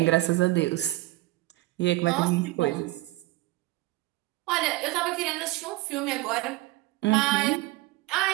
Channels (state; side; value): quieter; left; 18.5 dB